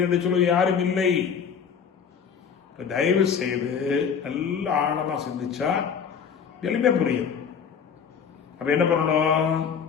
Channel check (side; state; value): right; quieter; 6.9 dB